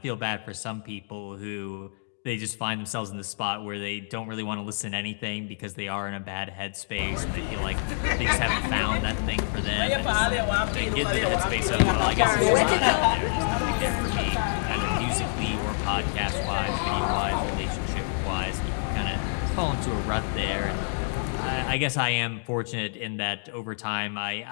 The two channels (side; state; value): right; silent; digital silence